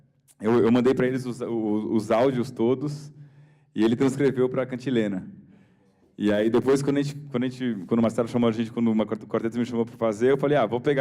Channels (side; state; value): both; identical; correlation 1.00